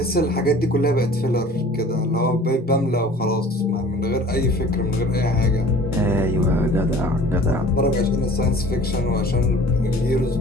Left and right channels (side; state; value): both; normal; correlation 0.47